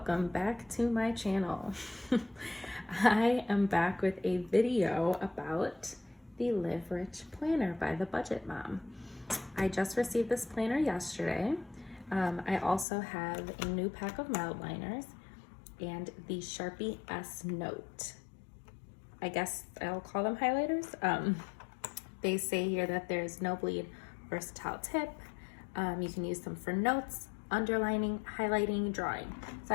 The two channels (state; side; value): drops out; right; at 12.9 s